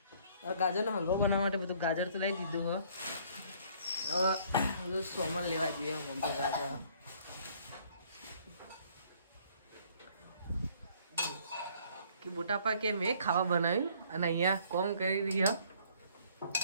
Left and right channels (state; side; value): inverted; both; correlation -0.60